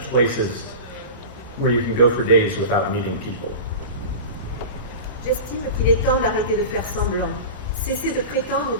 places where you can go for days without meeting people. J'estime qu'il est temps d'arrêter de faire semblant. Cesser de prétendre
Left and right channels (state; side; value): inverted; both; correlation -0.31